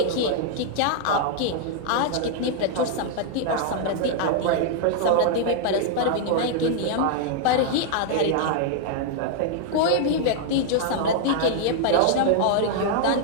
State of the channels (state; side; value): different; both; correlation -0.01